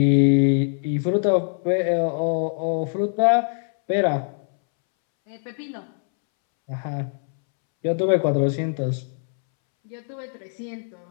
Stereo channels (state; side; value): silent; right; 63 dB below the other